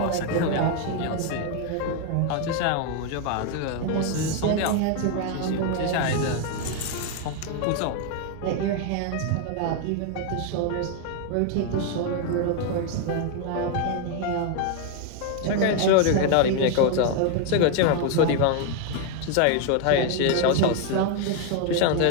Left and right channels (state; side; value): different; both; correlation 0.01